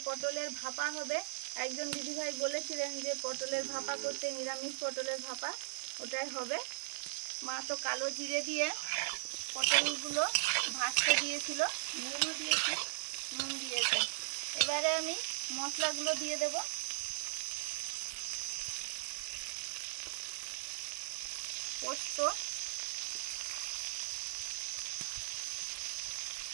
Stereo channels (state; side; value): silent; left; digital silence